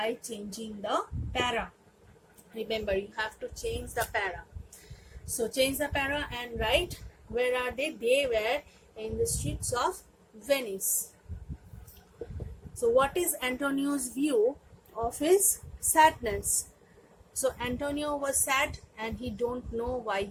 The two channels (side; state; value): both; identical; correlation 1.00